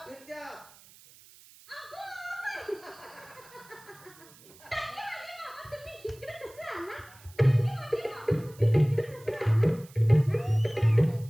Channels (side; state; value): right; noise; hiss, 23 dB below the sound